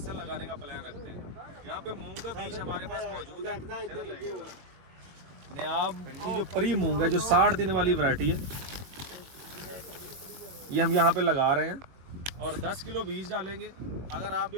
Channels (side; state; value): left; late; 22 ms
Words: लगाने का प्लान रखते हैं। यहाँ पे मूंग का बीज हमारे पास मौजूद है। नियाब की जो परी मूंग है, जो 60 दिन वाली वैरायटी है, ये हम यहाँ पे लगा रहे हैं और 10 किलो बीज डालेंगे। अगर आप